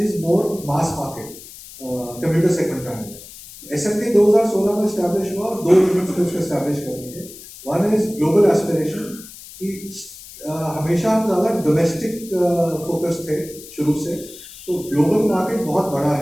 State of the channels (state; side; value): noise; left; hiss, 17 dB below the sound